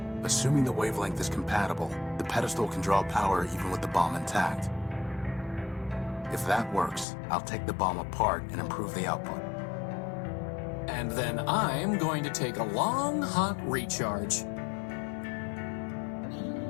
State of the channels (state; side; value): drops out; right; at 7.1 s